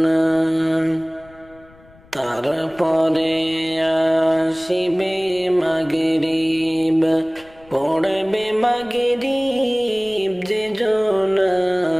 তারপরে আসিবে মাগরিব পড়বে মাগরিব যে জনা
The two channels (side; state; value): left; noise; rumble, 26 dB below the sound